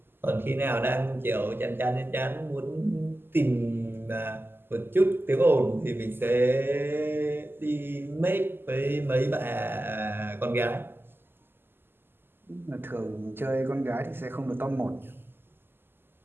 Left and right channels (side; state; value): left; late; 0.10 ms